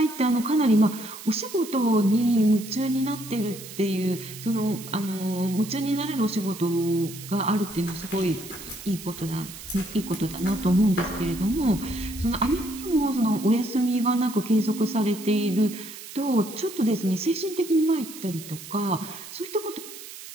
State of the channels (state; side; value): noise; right; hiss, 14 dB below the sound